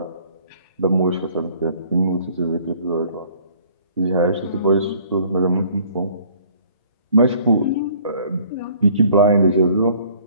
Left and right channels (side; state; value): both; inverted; correlation -0.57